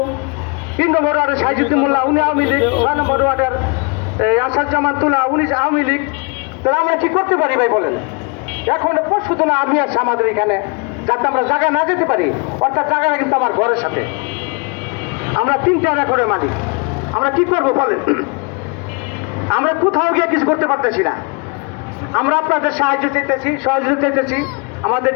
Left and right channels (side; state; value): right; quieter; 32.5 dB